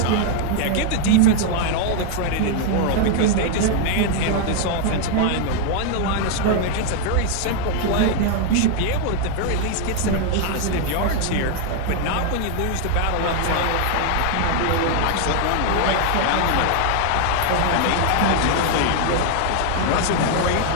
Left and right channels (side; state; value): both; different; correlation 0.00